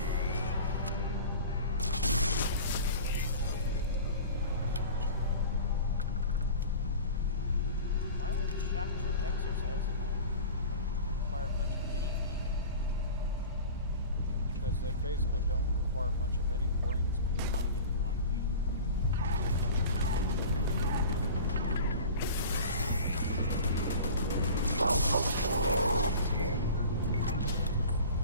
Why would the shock troop exercise not require much of anything? Because they basically don't require much of any brains behind it, Mikey.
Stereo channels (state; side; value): inverted; both; correlation -0.37